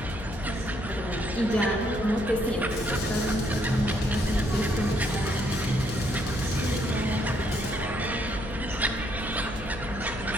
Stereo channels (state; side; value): noise; left; hum, 11 dB below the sound